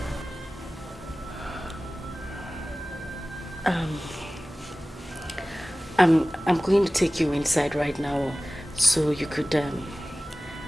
I'm going to take you inside right now so you could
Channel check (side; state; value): both; normal; correlation 0.97